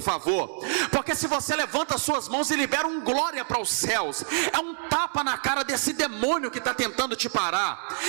favor. Porque se você levanta as suas mãos e libera um glória para os céus, é um tapa na cara desse demônio que está tentando te parar.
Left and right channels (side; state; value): left; silent; digital silence